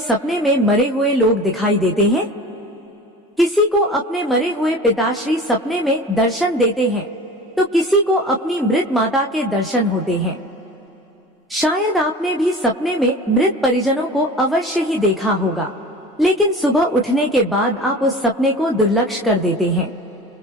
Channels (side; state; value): both; normal; correlation 0.38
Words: में मरे हुए लोग दिखाई देते हैं? किसी को अपने मरे हुए पिताश्री सपने में दर्शन देते हैं तो किसी को अपनी मृत माता के दर्शन होते हैं। शायद आपने भी सपने में मृत परिजनों को अवश्य ही देखा होगा, लेकिन सुबह उठने के बाद आप उस सपने को दुर्लक्ष्य कर देते हैं।